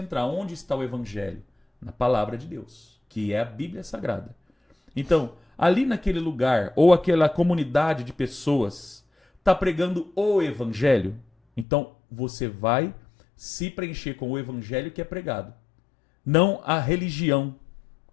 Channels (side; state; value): right; drops out; at 11.7 s